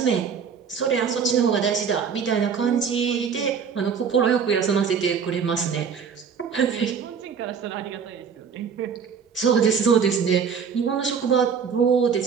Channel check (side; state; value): left; quieter; 6.6 dB